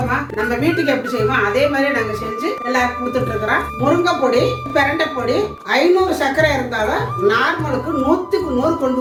நம்ம வீட்டுக்கு எப்படி செய்வோம் அதே மாதிரி நாங்க செஞ்சு எல்லாருக்கும் கொடுத்துட்டு இருக்கிறோம். முருங்கை பொடி, பிரண்டை பொடி 500 சர்க்கரை இருந்தாலும் நார்மலுக்கு 100க்கு 100 கொண்டு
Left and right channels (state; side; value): identical; both; correlation 1.00